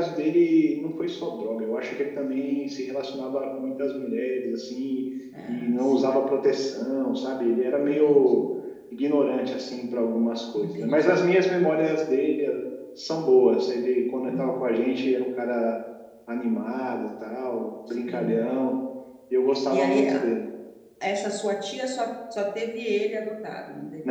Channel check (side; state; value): both; identical; correlation 1.00